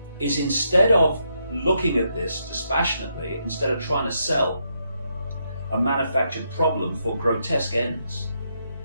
is, instead of looking at this dispassionately, instead of trying to sell a manufactured problem for grotesque ends,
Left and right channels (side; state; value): both; inverted; correlation -0.79